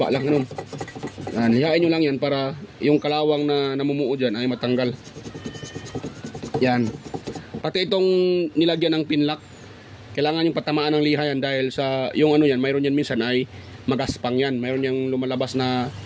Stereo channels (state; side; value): identical; both; correlation 1.00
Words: lang ganun. Yan, lihain nyo lang yan para yung kalawang na namumuo dyan ay matanggal. Yan, pati itong nilagyan ng pinlock, kailangan yung patamaan ng liha yan, dahil sa yung yan, mayroon yan minsan ay magaspang yan, mayroon yung lumalabas na